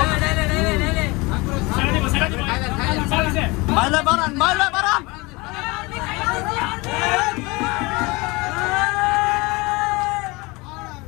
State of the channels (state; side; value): quieter; right; 24.7 dB